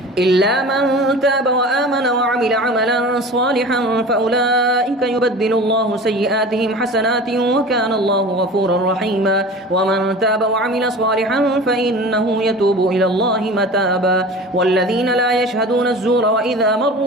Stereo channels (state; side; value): normal; both; correlation 0.37